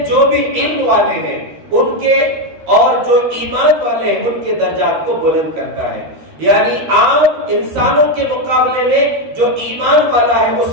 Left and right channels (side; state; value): left; late; 13 ms